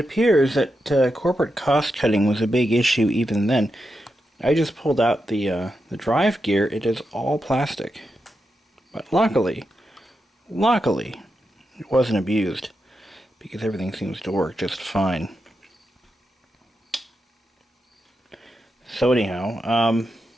that corporate cost cutting was a big issue even then. I just pulled out the drive gear. It is all plastic. But luckily, it wasn't abused, because everything seems to work just fine. So anyhow, I'm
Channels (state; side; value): normal; both; correlation 0.87